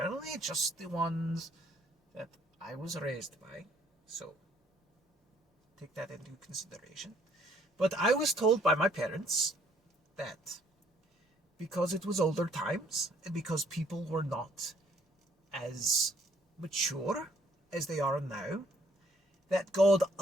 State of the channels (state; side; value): normal; both; correlation 0.63